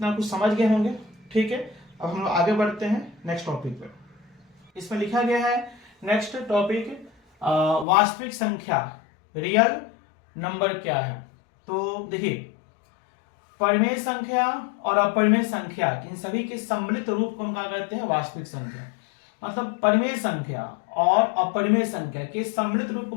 कुछ समझ गए होंगे। ठीक है, अब हम लोग आगे बढ़ते हैं नेक्स्ट टॉपिक पे। इसमें लिखा गया है नेक्स्ट टॉपिक, वास्तविक संख्या, रियल नंबर क्या है। तो देखिए, परिमेय संख्या और अपरिमेय संख्या, इन सभी के सम्मिलित रूप को हम क्या कहते हैं? वास्तविक संख्या। मतलब परिमेय संख्या और अपरिमेय संख्या के सम्मिलित रूप को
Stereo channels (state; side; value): drops out; right; at 7.9 s